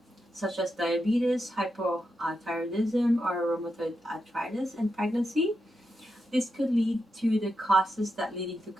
such as diabetes, hypothyroidism, or rheumatoid arthritis in pregnancy. This could lead to the causes that leading to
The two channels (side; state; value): both; normal; correlation 0.86